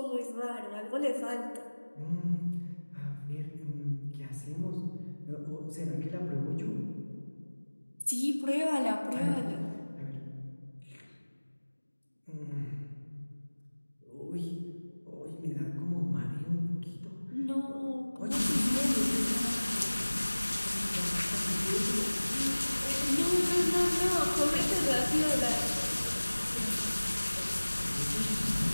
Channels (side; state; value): both; inverted; correlation -1.00